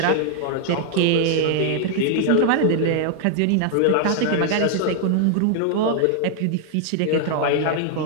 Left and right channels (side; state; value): both; different; correlation 0.00